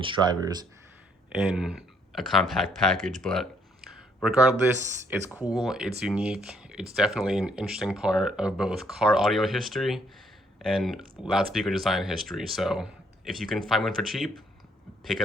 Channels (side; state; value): both; normal; correlation 0.69